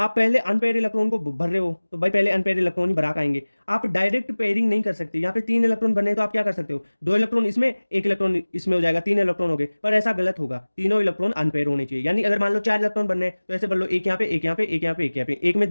पहले अनपेयर इलेक्ट्रॉन को भर रहे हो तो भाई पहले अनपेयर इलेक्ट्रॉन ही भरा के आएंगे। आप डायरेक्ट पेयरिंग नहीं कर सकते, यहाँ पे 3 इलेक्ट्रॉन बने तो आप क्या कर सकते हो, 2 इलेक्ट्रॉन इसमें 1 इलेक्ट्रॉन इसमें हो जाएगा, 3 इलेक्ट्रॉन हो गए, पर ऐसा गलत होगा, तीनों इलेक्ट्रॉन अनपेयर होने चाहिए। यानी अगर मान लो 4 इलेक्ट्रॉन बनने हैं तो ऐसे भर लो, एक यहाँ पे, एक यहाँ पे, एक यहाँ पे, एक यहाँ पे, एक में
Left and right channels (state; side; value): inverted; both; correlation -1.00